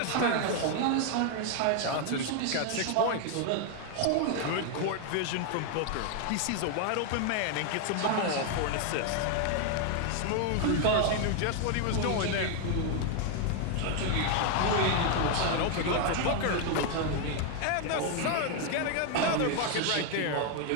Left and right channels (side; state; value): both; different; correlation 0.01